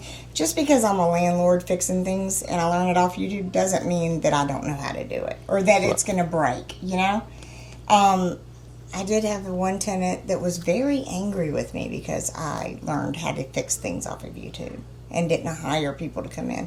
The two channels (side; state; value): both; identical; correlation 1.00